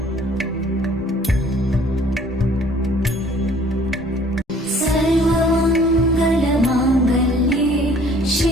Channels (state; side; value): normal; both; correlation 0.55